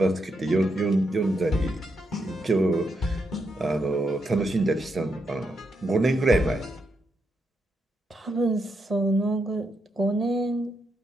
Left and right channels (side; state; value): both; normal; correlation 0.81